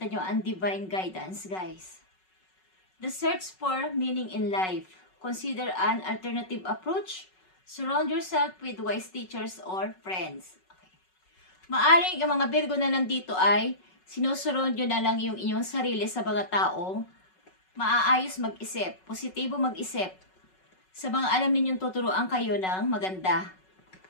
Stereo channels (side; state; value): right; late; 5.4 ms